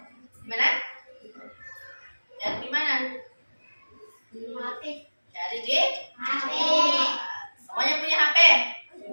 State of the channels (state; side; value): inverted; both; correlation -1.00